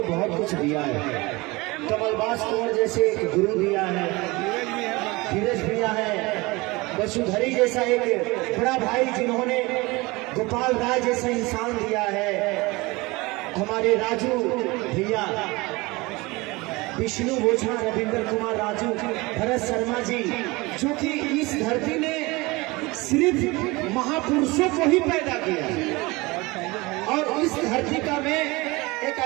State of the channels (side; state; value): left; quieter; 23.2 dB